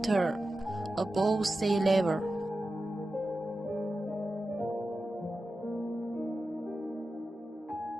above sea level.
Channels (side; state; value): both; normal; correlation 0.92